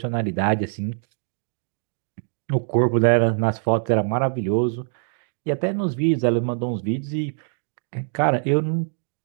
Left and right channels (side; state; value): left; silent; 63 dB below the other